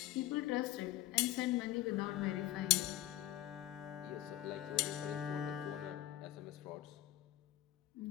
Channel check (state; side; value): quieter; right; 14.4 dB